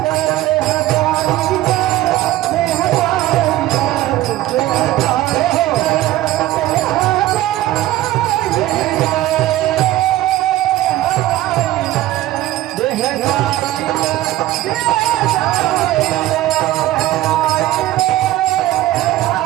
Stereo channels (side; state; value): left; quieter; 15.3 dB